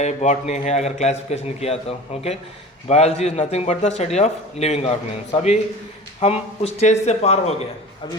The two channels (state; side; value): normal; both; correlation 0.37